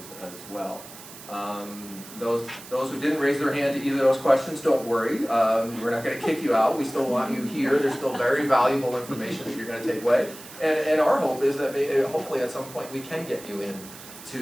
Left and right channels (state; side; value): noise; right; hiss, 16 dB below the sound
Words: as well. Those who didn't raise their hand to either of those questions, don't worry. We're not going to kick you out. We still want you here. There's still very valuable information that you're going to take away. And our hope is that hopefully at some point we can get you in